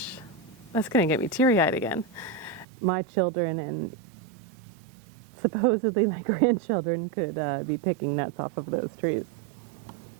that's going to get me teary-eyed again. My children and supposedly my grandchildren could be picking nuts off of those trees.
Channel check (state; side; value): drops out; left; at 2.7 s